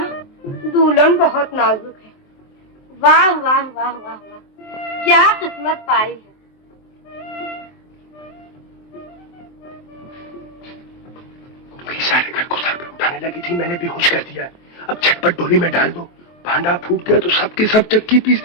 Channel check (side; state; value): right; late; 24 ms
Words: दुल्हन बहुत नाजुक है। वाह वाह वाह वाह वाह, क्या किस्मत पाई है। सारे घर को सर पे उठाने लगी थी, मैंने बेहोश कर दिया। अब झटपट डोली में डाल दो, भांडा फूट गया तो सबके सब चक्की